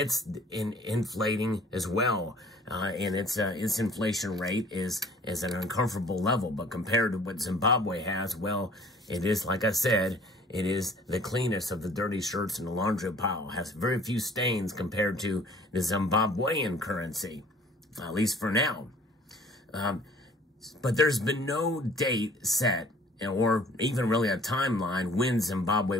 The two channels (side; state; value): both; normal; correlation 0.52